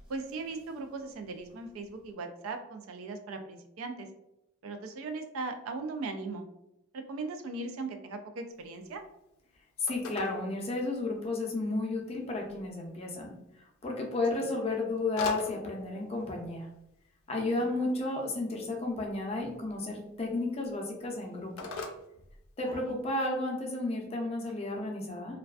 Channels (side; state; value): both; normal; correlation 0.42